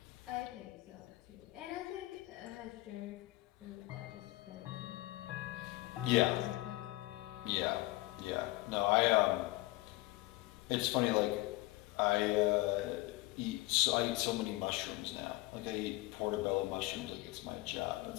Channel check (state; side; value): quieter; right; 19.6 dB